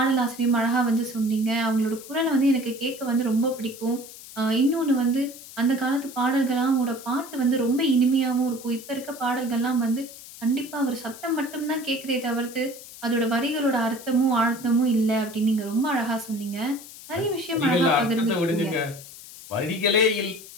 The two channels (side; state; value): left; noise; hiss, 16 dB below the sound